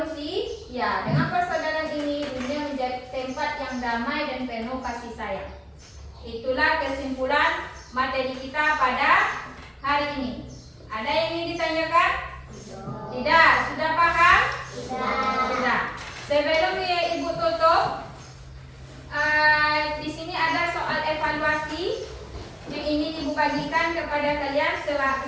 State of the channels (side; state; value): both; identical; correlation 1.00